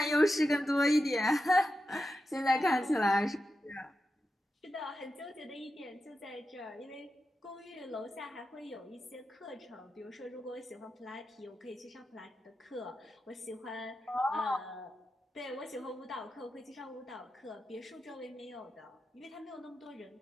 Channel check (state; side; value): normal; both; correlation 0.90